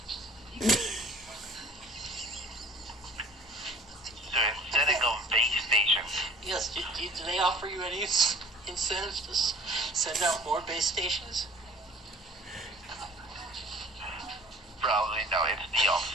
So instead of base stations, Yes. Do they offer you any incentives to send out more base stations? probably no, it's the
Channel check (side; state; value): both; normal; correlation 0.49